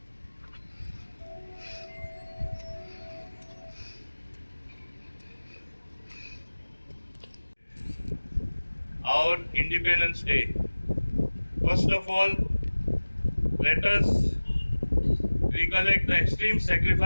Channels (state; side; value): inverted; both; correlation -1.00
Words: our Independence Day. First of all, let us recollect the extreme